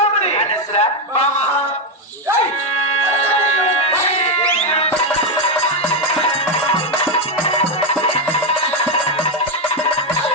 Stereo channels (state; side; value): normal; both; correlation 0.06